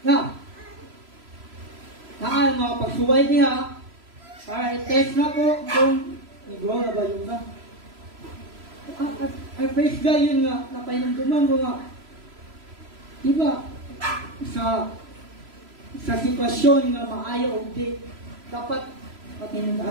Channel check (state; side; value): late; left; 3.0 ms